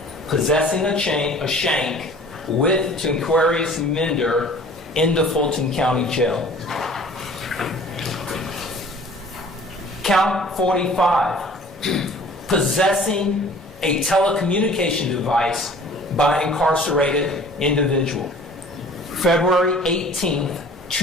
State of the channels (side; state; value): both; normal; correlation 0.48